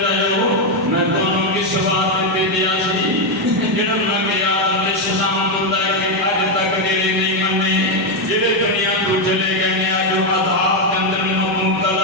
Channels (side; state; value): both; normal; correlation 0.04